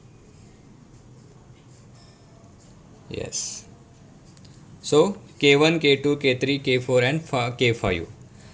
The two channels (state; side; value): identical; both; correlation 1.00